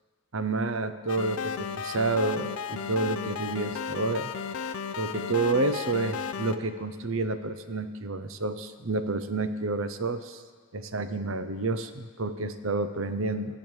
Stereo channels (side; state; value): both; normal; correlation -0.11